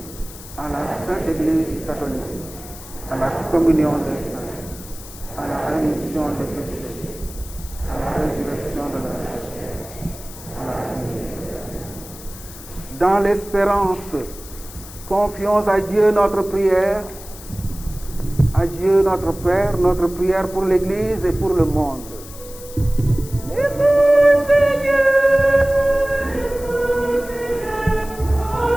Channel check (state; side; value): noise; left; hiss, 16 dB below the sound